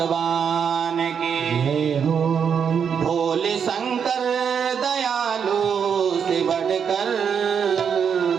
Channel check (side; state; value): left; quieter; 7.2 dB